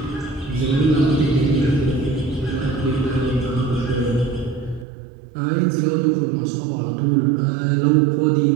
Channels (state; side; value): drops out; left; at 4.9 s